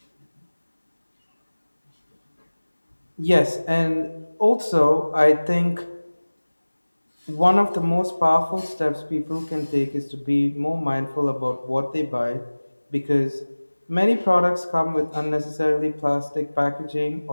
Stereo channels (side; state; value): both; inverted; correlation -1.00